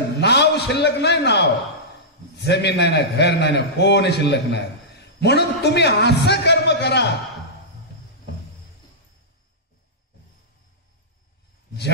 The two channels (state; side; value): normal; both; correlation -0.14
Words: नाव शिल्लक नाही. नाव जमीन नाही ना घर नाही ना कोण शिल्लक नाही. म्हणून तुम्ही असं कर्म करा